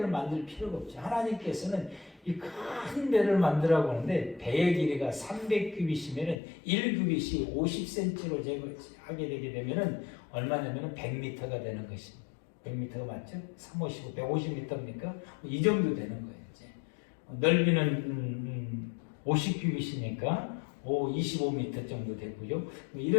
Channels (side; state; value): right; drops out; at 6.4 s